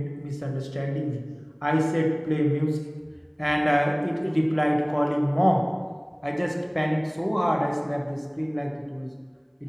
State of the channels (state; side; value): identical; both; correlation 1.00